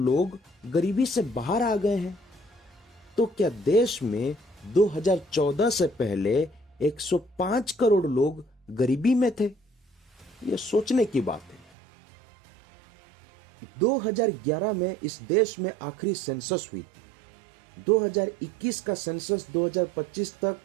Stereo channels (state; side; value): drops out; left; at 11.7 s